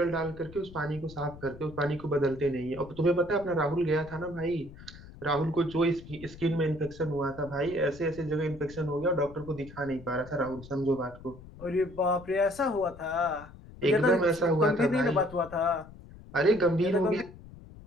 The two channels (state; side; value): noise; left; rumble, 18 dB below the sound